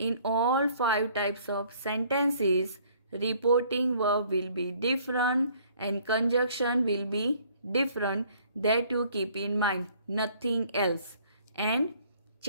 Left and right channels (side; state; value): both; inverted; correlation -0.59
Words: all 5 types of sentences, reporting verb will be different and conjunction will be different. That you keep in mind, nothing else. And